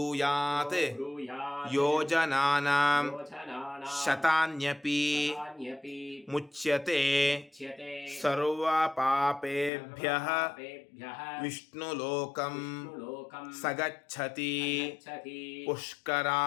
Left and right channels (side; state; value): right; drops out; at 9.7 s